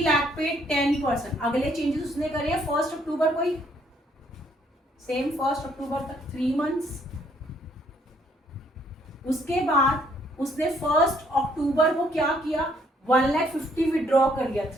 लाख पे 10%। अगले चेंजेस उसने करे 1 अक्टूबर को ही, सेम 1 अक्टूबर तक 3 मंथ्स। उसके बाद उसने 1 अक्टूबर को क्या किया, 1,50,000 विड्रॉ कर लिया,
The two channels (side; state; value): both; normal; correlation 0.67